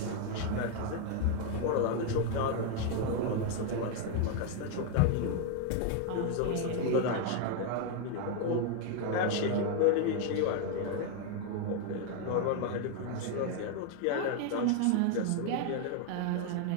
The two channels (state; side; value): different; both; correlation 0.01